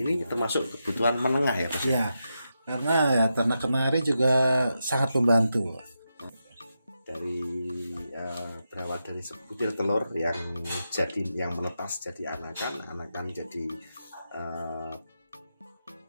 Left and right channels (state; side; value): inverted; both; correlation -0.87